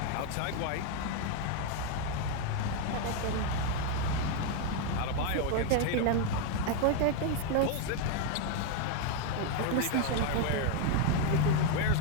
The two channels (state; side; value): different; both; correlation 0.01